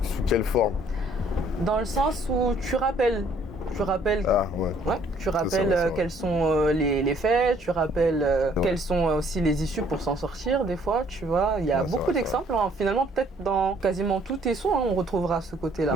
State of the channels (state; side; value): normal; both; correlation 0.62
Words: quelle forme ? Dans le sens où tu rappelles. Tu rappelles, tu rappelles quels sont les faits, tu rappelles quelles sont aussi les issues pour s'en sortir des fois, tu vois. Il y a beaucoup d'exemples, hein. Finalement peut-être dans quasiment tous tes sons, hein, on retrouvera ce côté-là.